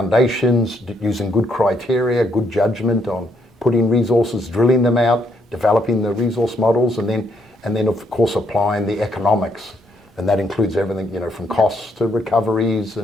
using good criteria, good judgment on putting resources, drilling them out, developing the resource models, and then of course applying the economics. And that includes everything, from costs to recoveries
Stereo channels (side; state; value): both; normal; correlation 0.73